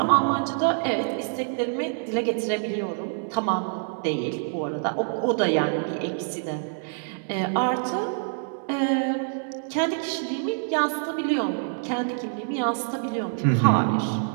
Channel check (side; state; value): left; silent; digital silence